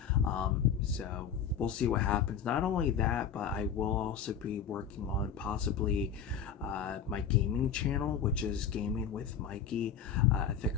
So we'll see what happens. Not only that, but I will also be working on possibly my gaming channel, which is Gaming with Mikey. I think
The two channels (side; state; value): right; quieter; 7.6 dB